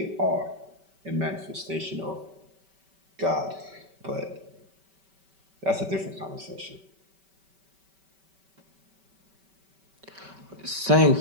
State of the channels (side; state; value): left; late; 5.2 ms